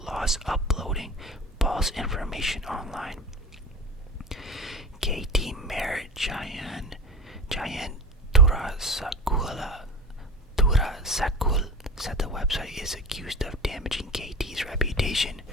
uploading false information online. KT Mayor Jayan Turasakul said the website is accused of damaging KT's reputation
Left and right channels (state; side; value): normal; both; correlation 0.31